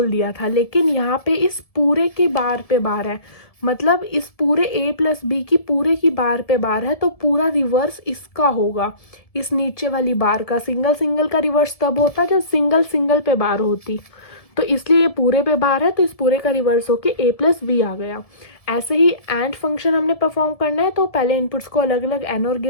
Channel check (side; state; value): right; late; 1.7 ms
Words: दिया था। लेकिन यहाँ पे इस पूरे की बार पे बार है, मतलब इस पूरे a प्लस बी की पूरे की बार पे बार है, तो पूरा रिवर्स इसका होगा, इस नीचे वाली बार का। सिंगल सिंगल का रिवर्स तब होता जब सिंगल सिंगल पे बार होती, तो इसलिए ये पूरे पे बार है तो इस पूरे का रिवर्स होके a प्लस बी आ गया। ऐसे ही एंड फंक्शन हमने परफॉर्म करना है तो पहले इनपुट्स को अलग अलग एनोर